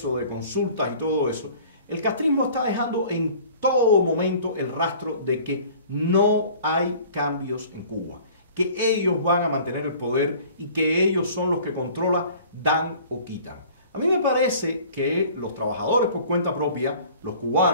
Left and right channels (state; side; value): inverted; both; correlation -0.48